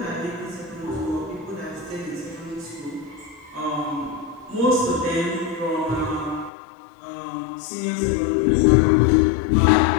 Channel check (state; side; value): drops out; right; at 6.5 s